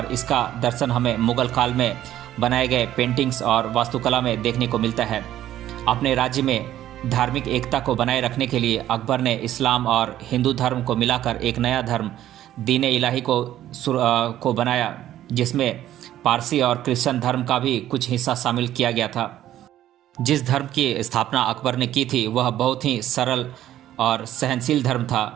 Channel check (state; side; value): quieter; left; 12.6 dB